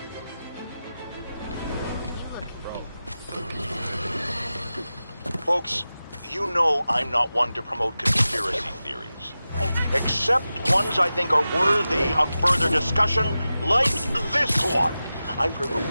Folks, you know I'm not one to promote conspiracy theories. Except ones I think are worthy of further discussion, like this one. I've heard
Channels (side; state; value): both; inverted; correlation -0.94